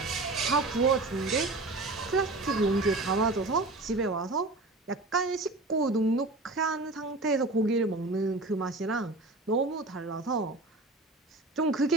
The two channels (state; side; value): quieter; left; 3.0 dB